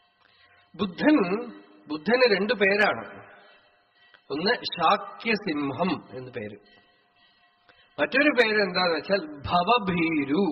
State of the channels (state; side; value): identical; both; correlation 1.00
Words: ബുദ്ധന് 2 പേരാണ്. ഒന്ന് ശാക്യസിംഹം എന്ന് പേര്, മറ്റൊരു പേര് എന്താന്ന് വെച്ചാൽ ഭവഭീരു